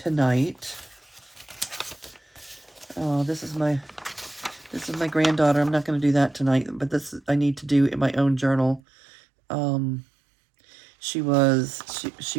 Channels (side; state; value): left; drops out; at 8.8 s